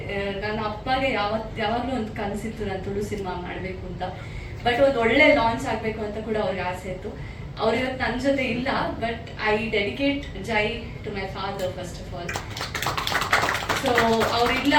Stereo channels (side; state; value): both; identical; correlation 1.00